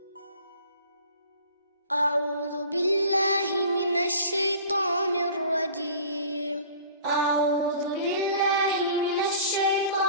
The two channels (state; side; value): inverted; both; correlation -0.46